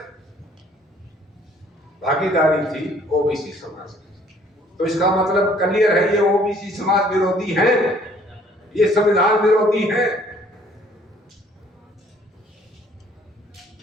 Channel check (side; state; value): both; normal; correlation 0.59